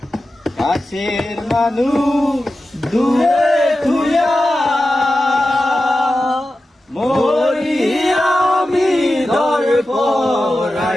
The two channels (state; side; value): normal; both; correlation 0.93